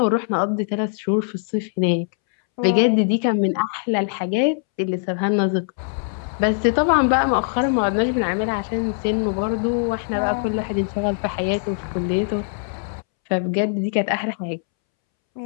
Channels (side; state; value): right; silent; 64 dB below the other